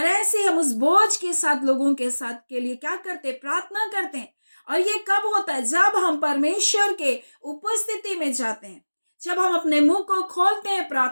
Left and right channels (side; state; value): both; inverted; correlation -1.00